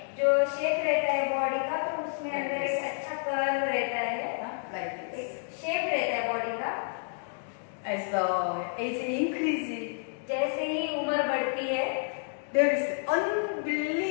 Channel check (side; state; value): right; silent; digital silence